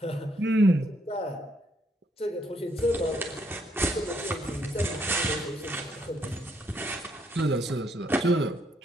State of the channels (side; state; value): both; normal; correlation 0.72